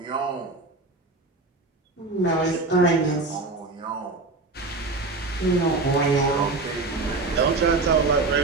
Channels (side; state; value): left; quieter; 3.6 dB